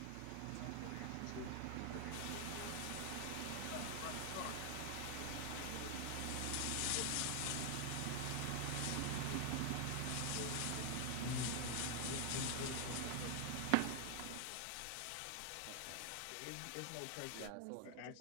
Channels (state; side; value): different; both; correlation 0.00